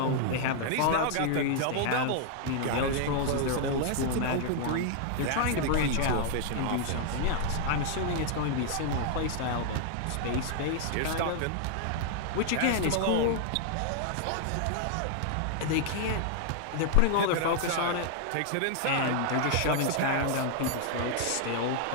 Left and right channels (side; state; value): both; different; correlation 0.00